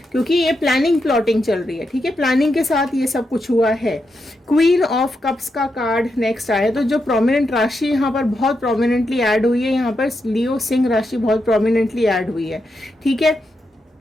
क्योंकि ये प्लानिंग प्लॉटिंग चल रही है। ठीक है, प्लानिंग के साथ ये सब कुछ हुआ है। क्वीन ऑफ कप्स का कार्ड नेक्स्ट आया, तो जो प्रोमिनेंट राशि यहाँ पर बहुत प्रोमिनेंटली ऐड हुई है, यहाँ पर लियो सिंह राशि बहुत प्रोमिनेंटली ऐड हुई है। ठीक है,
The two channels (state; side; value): normal; both; correlation 0.84